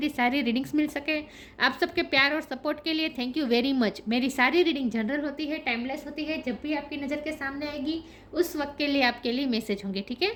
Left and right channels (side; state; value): both; identical; correlation 1.00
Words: सारी रीडिंग्स मिल सके। आप सबके प्यार और सपोर्ट के लिए थैंक यू वेरी मच। मेरी सारी रीडिंग जनरल होती है, टाइमलेस होती है। जब भी आपकी नज़र के सामने आएगी उस वक्त के लिए आपके लिए मैसेज होंगे, ठीक है।